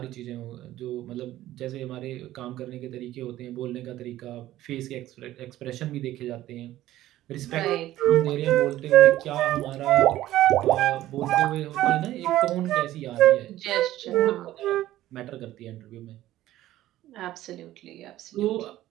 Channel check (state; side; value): quieter; left; 14.5 dB